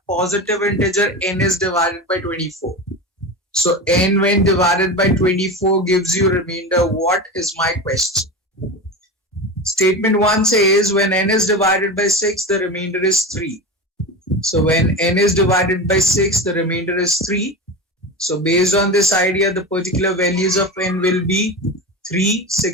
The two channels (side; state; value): both; normal; correlation 0.25